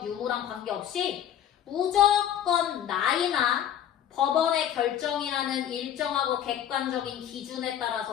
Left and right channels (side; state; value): right; quieter; 10.2 dB